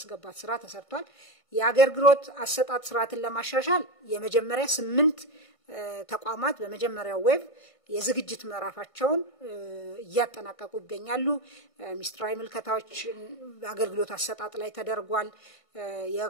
ስራ ተሰርቷል። የአገልግሎት አሰጣጥ ስርዓትን ለማሻሻል የመጀመሪያ 8 ተቋማት በመጀመሪያው ዌብ የዝግጅት ምዕራፋቸውን እያጠናቀቁ ይገኛሉ። ሚኒስትራዊ ምልከታዎች አገልግሎት አሰጣጥ ላይ ተደርጓል።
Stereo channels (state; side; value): late; right; 1.5 ms